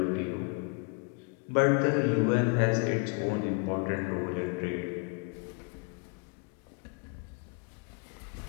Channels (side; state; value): right; quieter; 34.7 dB